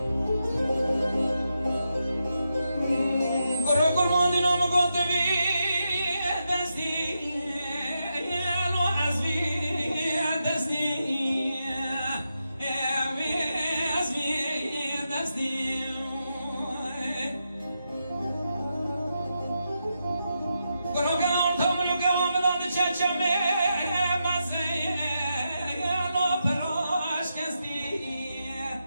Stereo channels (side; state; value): both; inverted; correlation -0.85